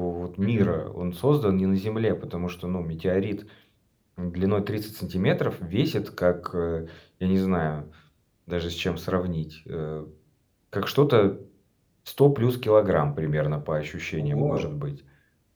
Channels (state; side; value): identical; both; correlation 1.00